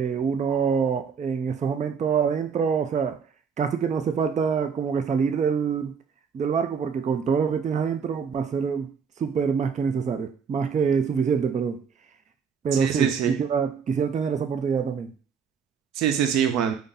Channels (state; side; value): quieter; left; 6.5 dB